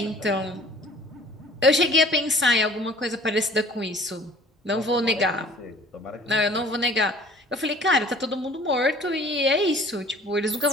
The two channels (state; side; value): normal; both; correlation 0.49